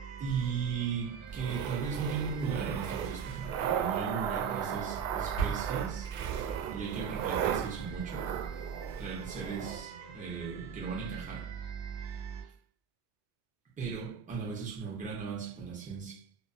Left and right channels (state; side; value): quieter; left; 7.0 dB